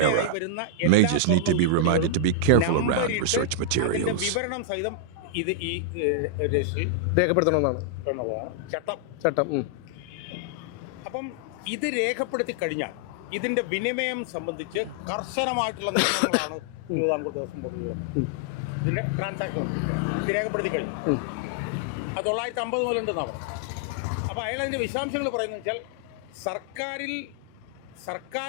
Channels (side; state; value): both; different; correlation -0.01